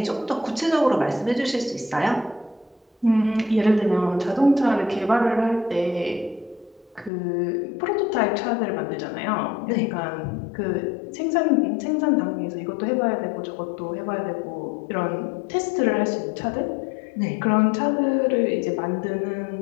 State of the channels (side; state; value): right; drops out; at 7.1 s